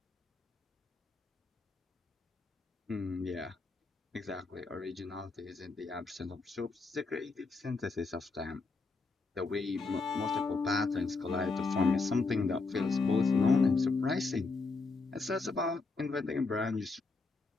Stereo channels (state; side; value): quieter; right; 4.0 dB